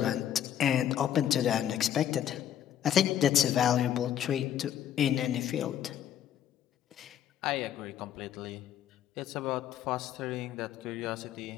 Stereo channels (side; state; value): right; quieter; 10.3 dB